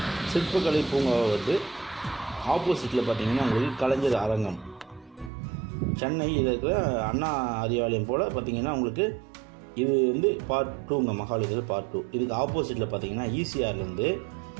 சிற்பக்கலை பூங்காவை வருது. ஆப்போசிட்டில் பார்த்திங்கன்னா உங்களுக்கு கலைஞர் அரங்கம், சென்னை இதில் இருக்கிற அண்ணா அறிவாலயம் போல் பார்த்திங்கன்னா உங்களுக்கு இது வந்து பார்ட் 2ங்க, மகாபலிபுரம் பார்ட் 2. இதுக்கு ஆப்போசிட்டில் பார்த்திங்கன்னா ஈசிஆர்லேருந்து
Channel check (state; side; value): drops out; left; at 5.3 s